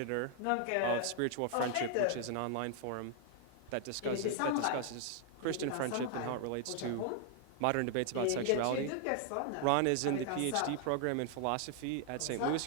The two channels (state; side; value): different; both; correlation 0.00